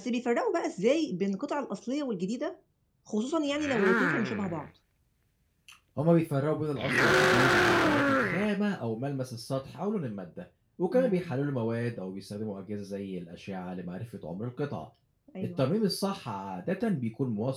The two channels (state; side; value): identical; both; correlation 1.00